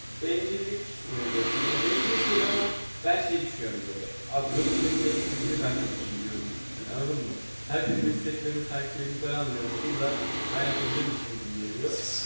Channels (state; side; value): inverted; both; correlation -1.00